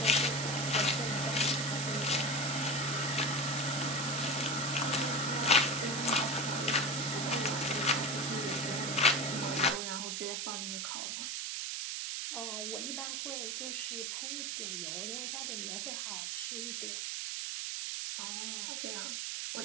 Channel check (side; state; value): right; noise; hiss, 2 dB below the sound